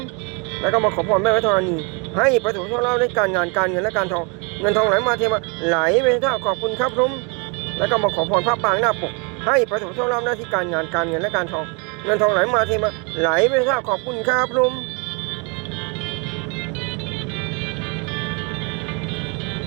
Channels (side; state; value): left; quieter; 32.8 dB